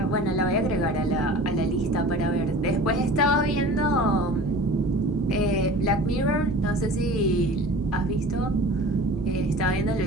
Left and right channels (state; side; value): normal; both; correlation 0.40